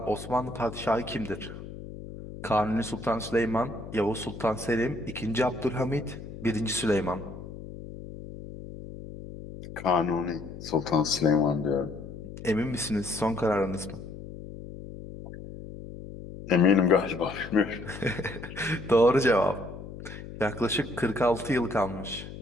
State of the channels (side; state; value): left; noise; hum, 12 dB below the sound